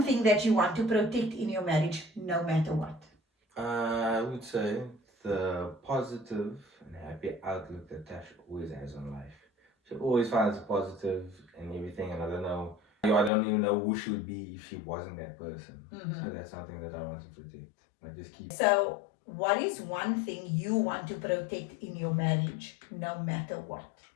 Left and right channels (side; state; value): right; drops out; at 13.3 s